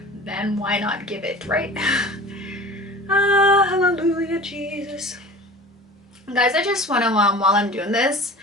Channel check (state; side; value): normal; both; correlation 0.39